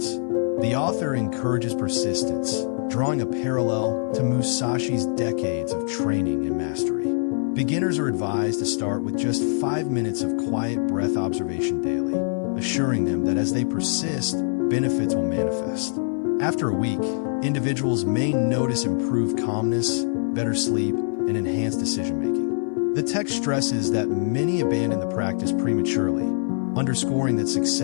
The author encourages persistence, drawing a parallel to Musashi's decades of training and mastery. Beginners are advised to start with just 5 minutes of quiet breath observation daily, assuring them that as they persist, benefits will manifest. After a week, individuals may notice improved calmness, better sleep, and enhanced decision-making. The text stresses that many abandon the practice prematurely, underscoring that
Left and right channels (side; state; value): right; silent; digital silence